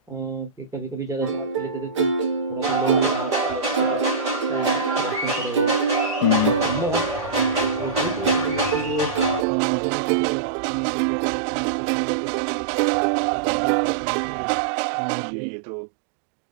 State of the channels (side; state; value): left; drops out; at 9.5 s